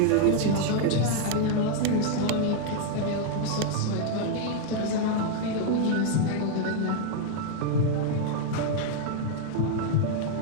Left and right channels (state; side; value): different; both; correlation 0.00